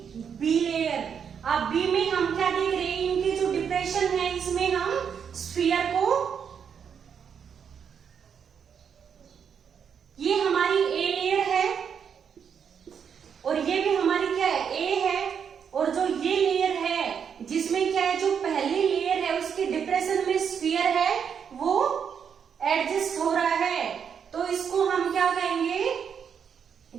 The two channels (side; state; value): left; quieter; 7.4 dB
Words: Be layer. अब बी में हम क्या देख रहे हैं, इनकी जो डिप्रेशन है इसमें हम स्फीयर को, ये हमारी ए लेयर है और ये भी हमारी क्या है, ए है। और जो ये लेयर है जिसमें क्या है, जो पहली लेयर है उसकी डिप्रेशन में स्फीयर है वो एडजस्ट हो रहा है, तो इसको हम क्या कहेंगे